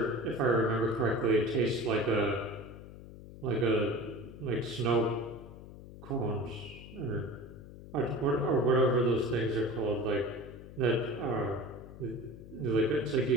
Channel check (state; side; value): noise; left; hum, 15 dB below the sound